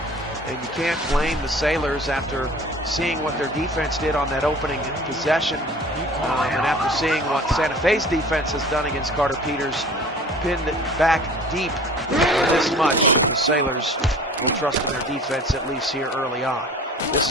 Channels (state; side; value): normal; both; correlation 0.45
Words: And you can't blame the Sailors after seeing what their defense did on that opening possession, and after seeing what Santa Fe's defense has done against Carter Peters, pinned back deep this much. The Sailors will trust in their defense at least here early on. This